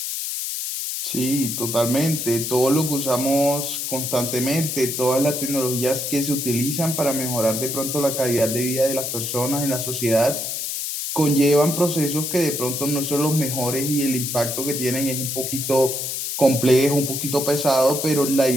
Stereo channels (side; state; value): left; noise; hiss, 3 dB below the sound